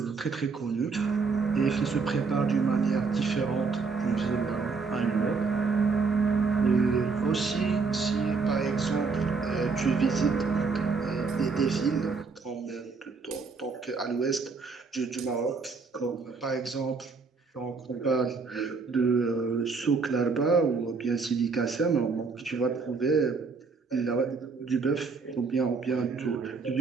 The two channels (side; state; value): left; quieter; 4.7 dB